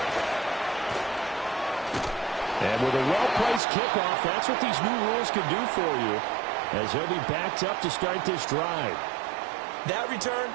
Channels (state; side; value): drops out; left; at 3.6 s